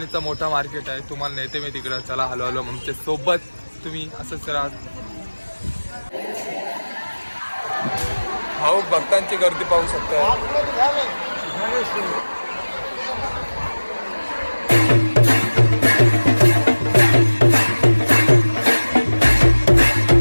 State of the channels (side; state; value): both; inverted; correlation -1.00